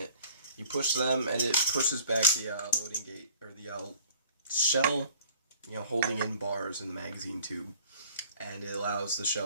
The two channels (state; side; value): inverted; both; correlation -0.52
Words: You push them and it pushes back the loading gate, or the shell, you know, holding in bars in the magazine tube, and it allows the